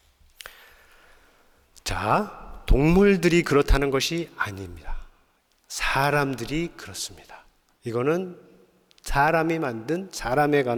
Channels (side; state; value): both; identical; correlation 1.00